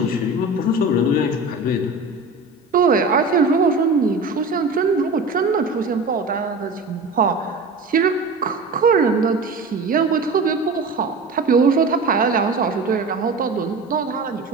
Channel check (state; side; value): quieter; left; 3.4 dB